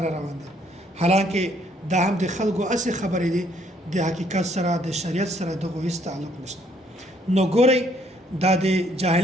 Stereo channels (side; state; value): both; normal; correlation 0.66